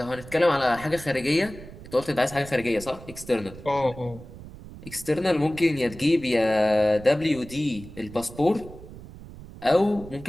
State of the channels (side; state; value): right; noise; rumble, 16 dB below the sound